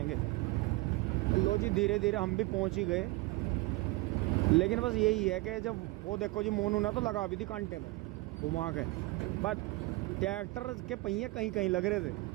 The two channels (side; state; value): left; quieter; 21.6 dB